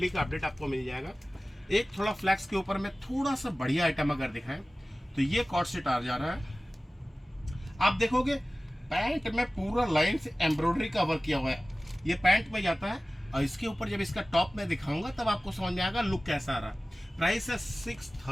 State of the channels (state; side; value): normal; both; correlation 0.97